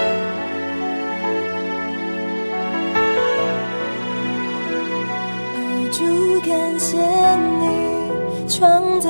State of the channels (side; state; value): both; inverted; correlation -1.00